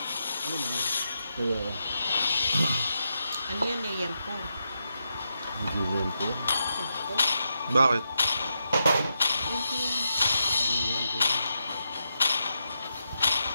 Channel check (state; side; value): inverted; both; correlation -0.84